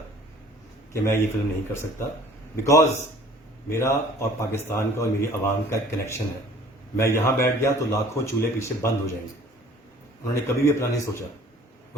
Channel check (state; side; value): normal; both; correlation 0.51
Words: کہ میں یہ فلم نہیں کر سکتا، بیکاز میرا اور پاکستان کا اور میری عوام کا ایک کنیکشن ہے۔ میں یہاں بیٹھ گیا تو لاکھوں چولہے پیچھے بند ہو جائیں گے۔ انہوں نے کبھی بھی اپنا نہیں سوچا،